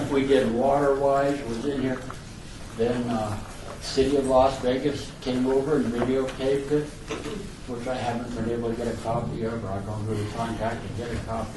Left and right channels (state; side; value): identical; both; correlation 1.00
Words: we did Water-Wise was in here. Then City of Las Vegas came over and videotaped it, which I haven't been able to get a copy of, or I've gone through the contact to get a